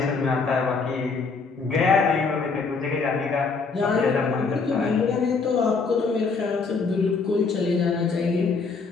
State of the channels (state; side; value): quieter; right; 4.6 dB